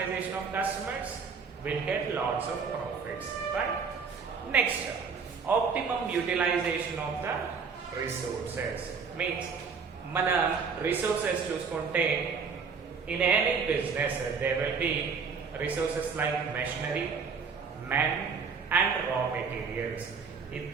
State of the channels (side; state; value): left; quieter; 5.5 dB